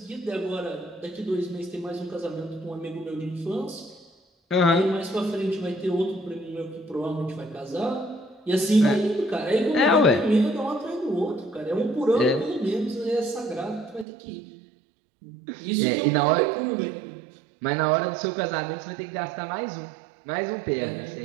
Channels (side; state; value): left; drops out; at 14.1 s